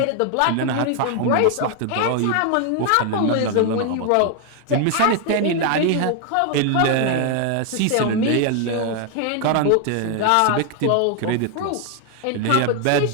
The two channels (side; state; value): both; different; correlation 0.00